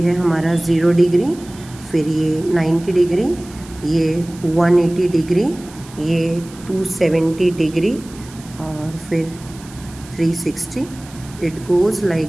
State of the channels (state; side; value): noise; right; hiss, 21 dB below the sound